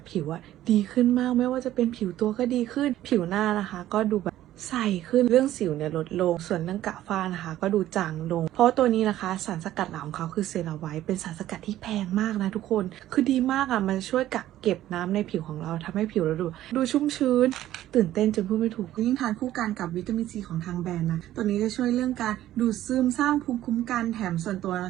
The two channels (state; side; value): quieter; left; 13.5 dB